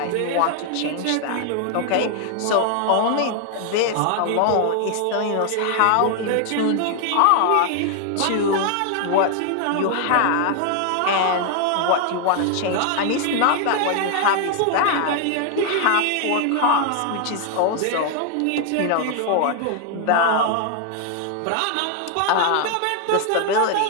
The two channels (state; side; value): different; both; correlation 0.00